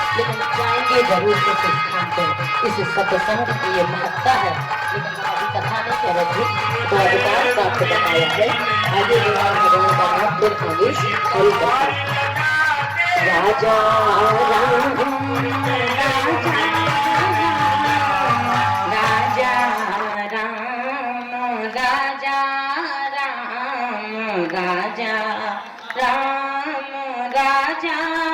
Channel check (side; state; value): both; identical; correlation 1.00